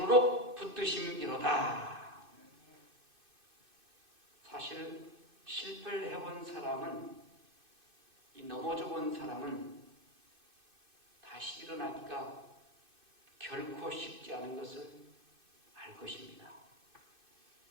붙드심이로다. 사실 실패를 해본 사람은, 이 넘어져 본 사람은 다시 일어나기가 결코 쉽지 않은 것을 알 것입니다.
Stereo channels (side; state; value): left; late; 2.5 ms